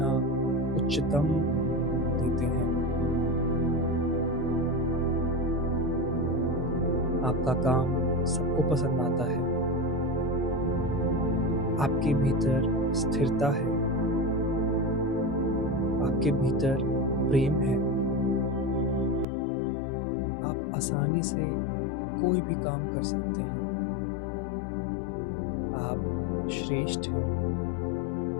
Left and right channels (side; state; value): right; drops out; at 19.2 s